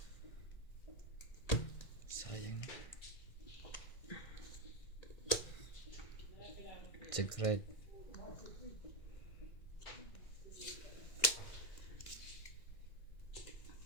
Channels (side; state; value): right; late; 2.0 ms